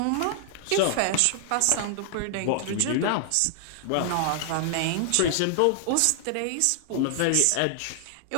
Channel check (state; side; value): different; both; correlation 0.00